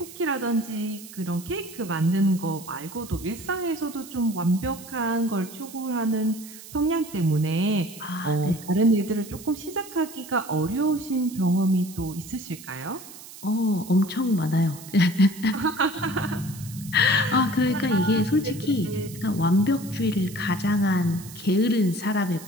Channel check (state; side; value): noise; right; hiss, 16 dB below the sound